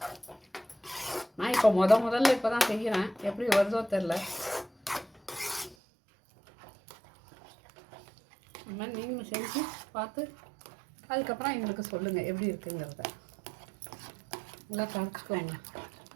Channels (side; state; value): left; drops out; at 5.8 s